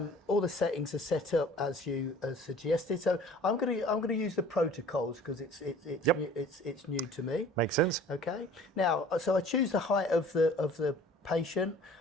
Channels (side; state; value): both; normal; correlation 0.48